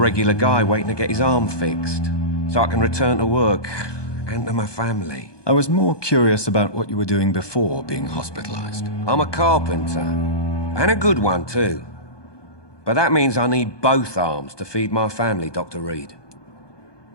guy waiting to get his arm fixed, so I can return to work and to my family. I was more curious about what you were doing before being hospitalized. I'm a carpenter, and a good one too. But that means I need both arms to feed my family, Dr. Reed.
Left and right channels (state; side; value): late; right; 1.2 ms